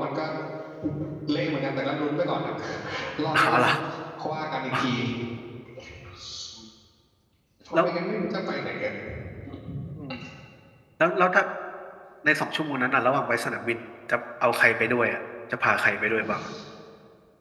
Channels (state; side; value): identical; both; correlation 1.00